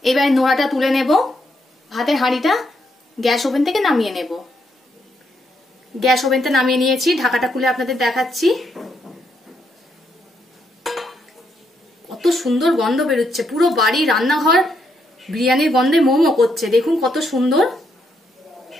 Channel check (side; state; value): both; normal; correlation 0.77